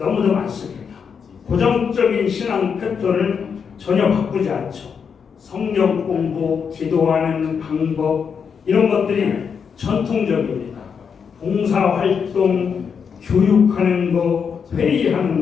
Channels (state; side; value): quieter; right; 6.6 dB